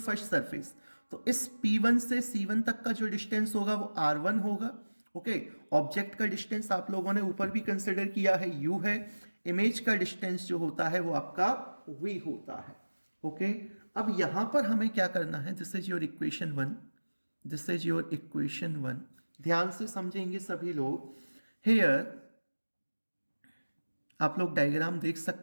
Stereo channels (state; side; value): inverted; both; correlation -1.00